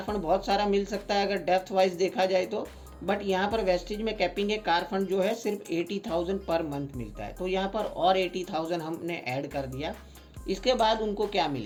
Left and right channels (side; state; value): both; identical; correlation 1.00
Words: फंड बहुत सारा मिल सकता है अगर डेप्थ वाइज देखा जाए तो, बट यहाँ पर वेस्टिज में कैपिंग है। कार फंड जो है सिर्फ 80,000 पर मंथ मिलता है, तो यहाँ पर और 80,000 हमने ऐड कर दिया। इसके बाद उनको क्या